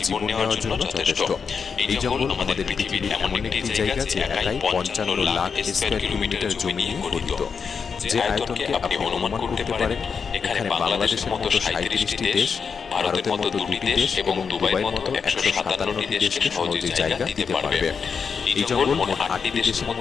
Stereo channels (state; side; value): quieter; right; 5.9 dB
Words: নেওয়ার জন্য যথেষ্ট। এই জঙ্গল আমাদের পৃথিবীর এমন একটি জায়গা যে একাই 55 লাখ স্কয়ার কিলোমিটার জমি নিয়ে গঠিত। যে আয়তনকে আপনি অনুমান করতে পারেন, এখানে বাংলাদেশের মতো 37টি দেশ, ভারতের মতো 2টি দেশ এবং দুবাইয়ের মতো 157টি দেশকে সহজে জায়গা দিতে পারবে। এই জঙ্গল মোট 8টি দেশের